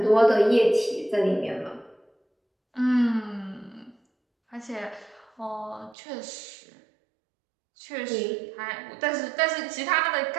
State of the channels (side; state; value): left; drops out; at 6.0 s